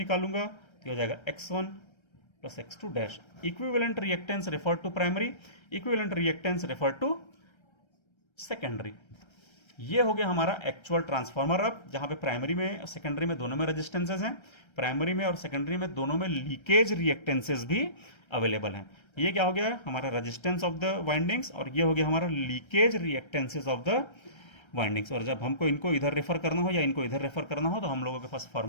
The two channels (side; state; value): right; late; 1.3 ms